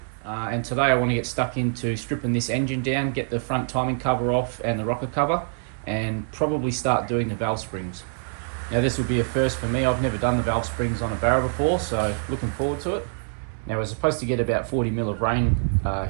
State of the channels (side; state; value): left; silent; digital silence